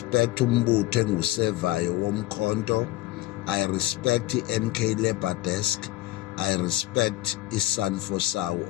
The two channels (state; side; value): quieter; right; 17.7 dB